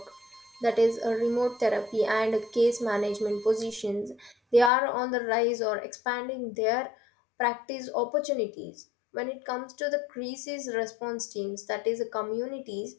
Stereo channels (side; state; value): right; drops out; at 4.7 s